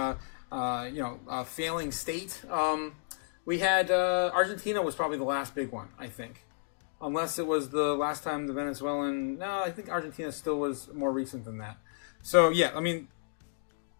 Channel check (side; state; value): right; silent; digital silence